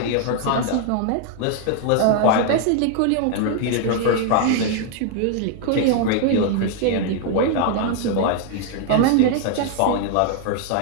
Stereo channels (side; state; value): both; different; correlation 0.00